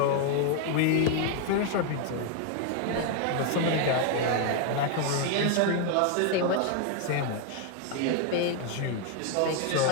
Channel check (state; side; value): different; both; correlation 0.01